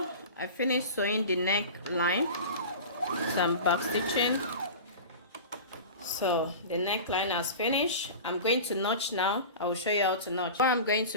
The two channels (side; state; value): both; inverted; correlation -0.33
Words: I finished sewing the neckline, so I'm back stitching. So the neckline has finished. I'm going to notch now. I will show you how to notch. What I'm going